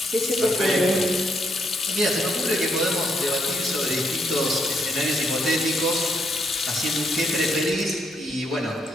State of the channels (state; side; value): normal; both; correlation 0.75